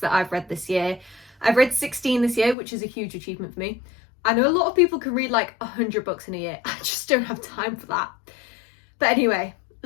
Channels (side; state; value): right; drops out; at 2.6 s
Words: I've read this year. I've read 16 this year, which is a huge achievement for me. I know a lot of people can read like 100 books in a year. I just don't have time for that. But anyway,